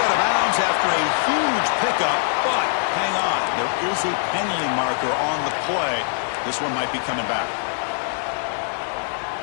out of bounds after a huge pickup, but hang on. There is a penalty marker on the play. This one might be coming back.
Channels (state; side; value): silent; right; digital silence